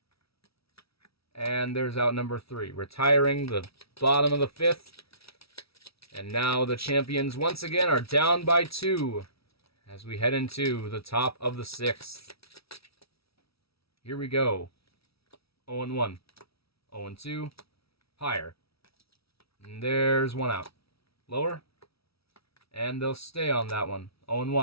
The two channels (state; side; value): late; right; 0.76 ms